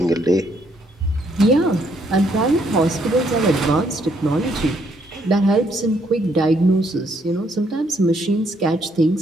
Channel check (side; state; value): both; normal; correlation 0.70